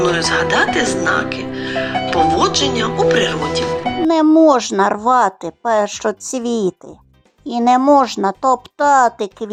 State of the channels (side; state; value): both; identical; correlation 1.00